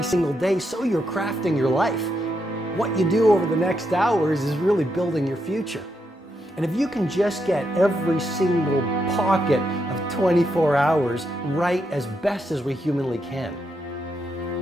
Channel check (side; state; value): both; normal; correlation 0.81